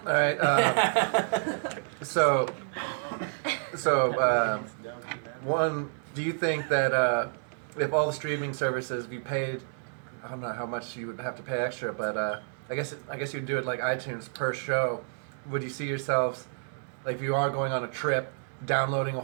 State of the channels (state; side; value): silent; left; digital silence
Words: All right. So one, do you think that if all the streaming services you paid, I don't know how much you would have to pay extra, but I guess you'd do it like iTunes per show. Would you see yourselves, like if you are going on a trip, downloading a